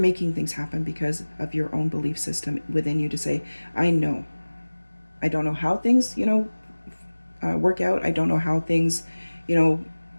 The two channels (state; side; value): inverted; both; correlation -1.00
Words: things happen because of your own belief system within you to say, I know. I don't know how things, work out. I don't know how things,